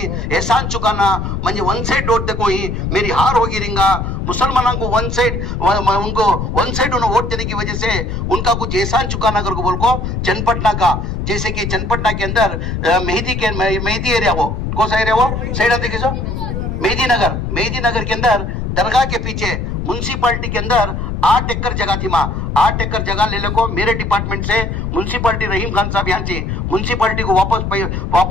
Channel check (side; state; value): left; noise; rumble, 3 dB below the sound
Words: चुकाना, मुझे वन साइड वोट देखो ही मेरी हार होगी रिंगा, मुसलमानों को वन साइड उन्हें वोट देने की वजह से उनका कुछ एहसान चुकाना कर को बोल को चन्नपटना का, जैसे कि चन्नपटना के अंदर मेहदी एरिया, वो कौन सा एरिया, वो साइड देखिए सो मेहदी नगर के अंदर दरगाह के पीछे म्युनिसिपालिटी के अंदर 8 एकड़ जगह थी माँ, 8 एकड़ जगह ले ले को मेरे डिपार्टमेंट से म्युनिसिपालिटी रहीम खान साहब यहाँ से म्युनिसिपालिटी को